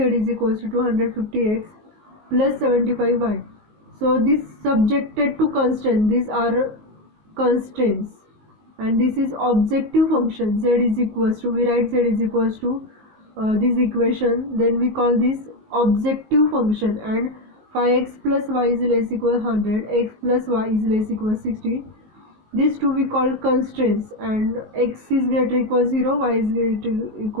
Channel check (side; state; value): left; late; 19 ms